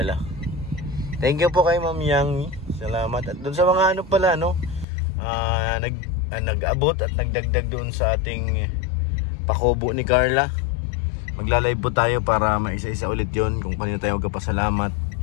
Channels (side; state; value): right; drops out; at 4.9 s